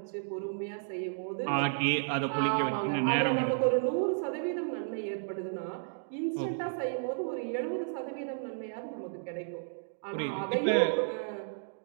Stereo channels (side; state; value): left; silent; digital silence